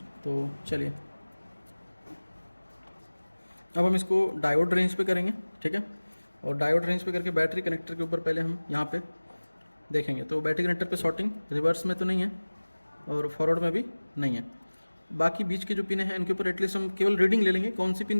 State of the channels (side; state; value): both; inverted; correlation -1.00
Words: तो चलिए अब हम इसको डायोड रेंज पे करेंगे। ठीक है, और डायोड रेंज पे करके बैटरी कनेक्टर के ऊपर पहले हम यहाँ पे देखेंगे। तो बैटरी कनेक्टर पे शॉर्टिंग रिवर्स में तो नहीं है, और फॉरवर्ड में भी नहीं है। बाकी बीच के जो पिन हैं इनके ऊपर एटलीस्ट हम केवल रीडिंग ले लेंगे, कौन सी